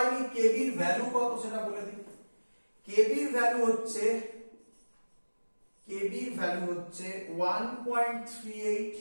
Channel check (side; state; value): both; inverted; correlation -1.00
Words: কেবির ভ্যালু কত সেটা বলে দিই। কেবির ভ্যালু হচ্ছে 1.38